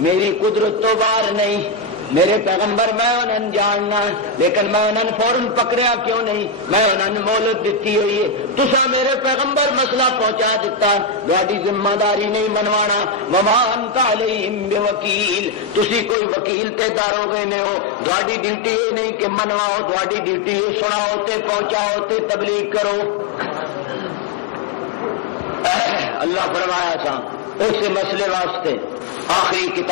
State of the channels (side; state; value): right; drops out; at 16.2 s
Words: میری قدرت تو باہر نہیں. میرے پیغمبر میں انہوں جاننا لیکن میں انہوں فوراً پکڑیا کیوں نہیں؟ میں انہوں مہلت دیتی ہوئی ہے. تسا میرے پیغمبر مسئلہ پہنچا دیتا، تہاڈی ذمہ داری نہیں منوانا. وما انت علیہم بوکیل. تسی کوئی وکیل تے دارو گے نہیں ہو، تہاڈی ڈیوٹی یہ نہیں کہ منواؤ، تہاڈی ڈیوٹی یہ سناؤ تے پہنچاؤ تے تبلیغ کرو. اللہ فرمایا سا اس مسئلے واسطے آخری